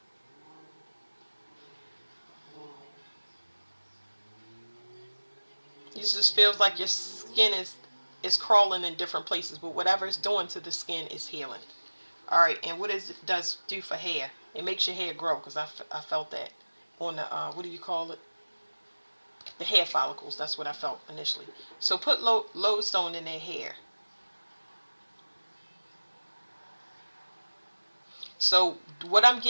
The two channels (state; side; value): inverted; both; correlation -1.00